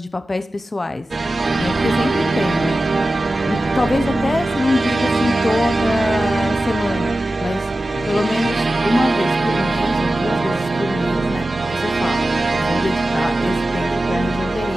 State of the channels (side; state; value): both; normal; correlation 0.94